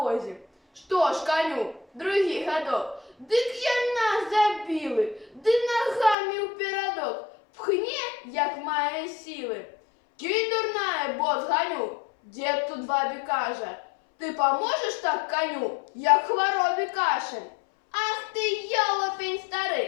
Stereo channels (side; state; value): right; drops out; at 6.2 s